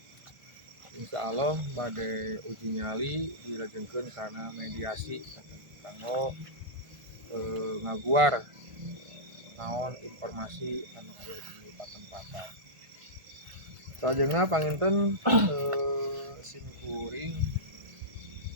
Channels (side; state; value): left; late; 1.5 ms